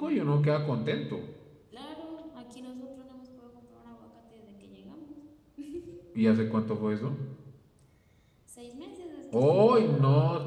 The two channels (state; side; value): identical; both; correlation 1.00